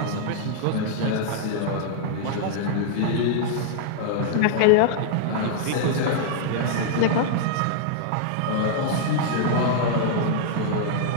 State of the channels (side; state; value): both; different; correlation -0.01